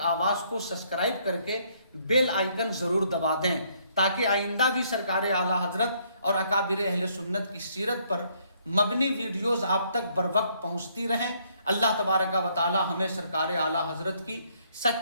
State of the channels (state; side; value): inverted; both; correlation -0.68